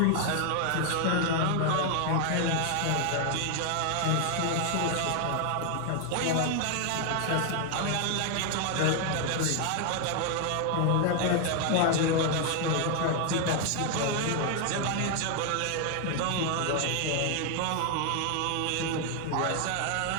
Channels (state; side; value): different; both; correlation 0.00